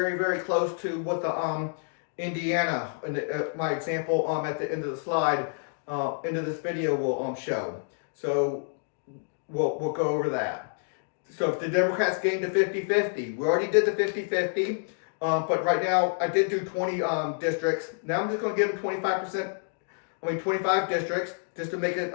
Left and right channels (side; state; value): right; silent; digital silence